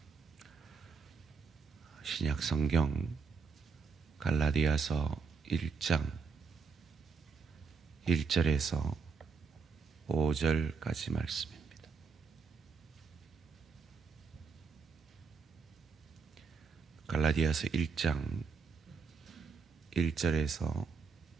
신약 성경 갈라디아서 1장 1절에서 5절까지 말씀입니다. 갈라디아서 1장 1절에서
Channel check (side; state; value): left; quieter; 5.3 dB